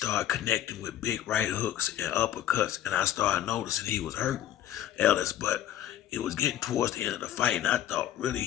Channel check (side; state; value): right; quieter; 11.9 dB